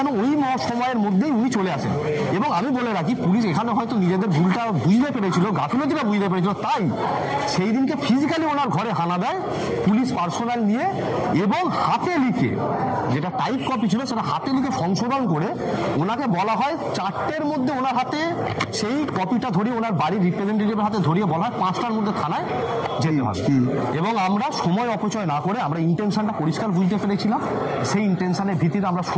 ওই সময়ের মধ্যেই উনি চলে আসেন। এবং আমি বলে রাখি, পুলিশ এখানে হয়তো নিজেদের ভুলটা বুঝতে পেরেছিল, গাফিলতিটা বুঝতে পেরেছিল, তাই সেই দিনকে ফিজিক্যালি ওনার ঘরে হানা দেয় পুলিশ পার্সোনাল নিয়ে এবং হাতে লিখে, যেটা টাইপ কপি ছিল সেটা হাতে লিখে সংশোধন করে ওনাকে বলা হয় 4টের মধ্যে ওনার হাতে সেই কপিটা ধরিয়ে, ওনার বাড়ির রিপ্রেজেন্টেটিভের হাতে ধরিয়ে বলা হয় 5টার মধ্যে থানায় যেতে হবে। এবং আমরা সময় অপচয় না করে, আমরা ইন্টেনশনটা পরিষ্কার বুঝতে পেরেছিলাম। সেই ইন্টেনশনের ভিত্তিতে আমরা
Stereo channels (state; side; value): identical; both; correlation 1.00